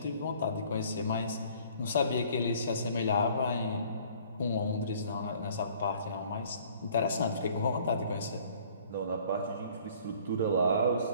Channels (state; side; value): inverted; both; correlation -0.55